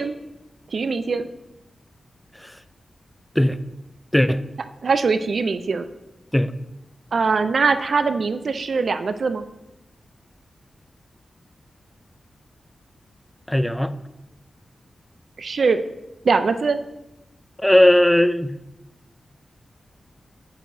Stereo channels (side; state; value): both; normal; correlation 0.94